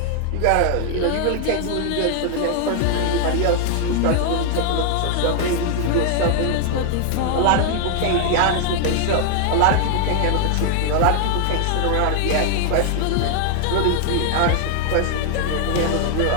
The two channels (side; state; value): both; different; correlation 0.00